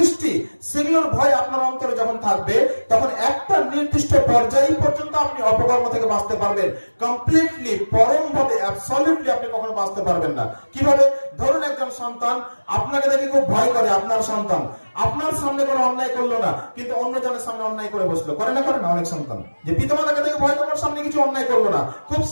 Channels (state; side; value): inverted; both; correlation -1.00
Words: সেগুলোর ভয় আপনার অন্তরে যখন থাকবে, তখন একটা নির্দিষ্ট পর্যায় পর্যন্ত আপনি অপকর্ম থেকে বাঁচতে পারবেন। কমপ্লিটলি, পরম ভাবে, অ্যাবসলিউটলি আপনি কখনো বাঁচতে পারবেন না। কিভাবে? ধরুন একজন সন্তান আপনাকে দেখে খুব ভয় করে। আপনার সন্তান আপনার সামনে কোনো অন্যায় করলো না, কিন্তু অন্যজনের সামনে অন্যায় করে বসলো। করে না? করে না? অনেক সন্তান যে পিতামাতাকে দেখে ভয় করার সামনে কিছু অন্যায় করলো না, খুব